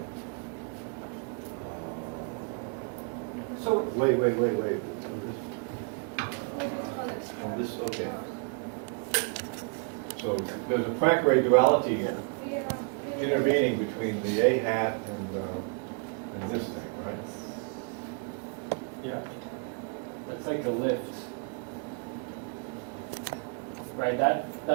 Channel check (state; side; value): quieter; left; 39.3 dB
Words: so Wait. Oh, This, okay. So there's a Poincare duality yeah. intervening between the A hat and this thing, right? yeah. That's like a lift. Right, that,